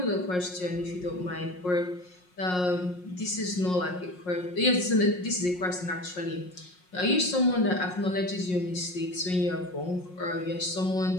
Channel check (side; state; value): right; late; 5.5 ms